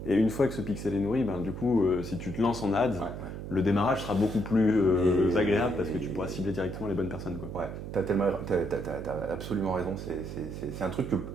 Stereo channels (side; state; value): right; noise; hum, 8 dB below the sound